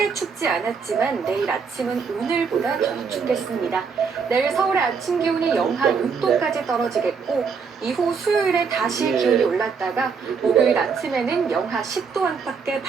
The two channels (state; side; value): quieter; left; 5.7 dB